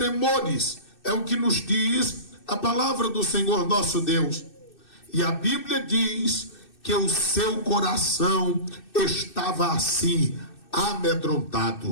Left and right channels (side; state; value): right; late; 2.6 ms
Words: É o que nos diz a palavra do Senhor nosso Deus. E a Bíblia diz que o seu coração estava assim,